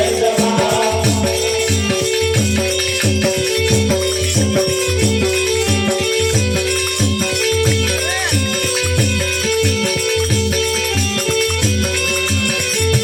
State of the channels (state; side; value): identical; both; correlation 1.00